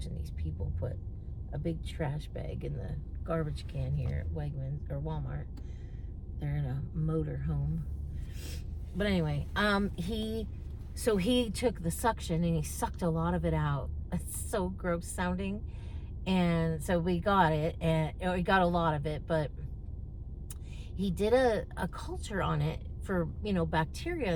these people put a big trash bag in the garbage can here at Wegmans or Walmart. They're in a motor home. But anyway, he took the suction and he sucked a lot of it out. It's so gross sounding. And so we got it, and we got a lot of it, but he did a culture on it for,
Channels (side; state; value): both; identical; correlation 1.00